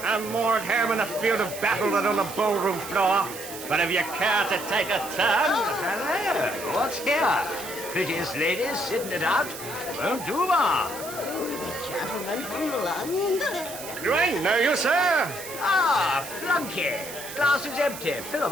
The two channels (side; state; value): right; noise; hiss, 11 dB below the sound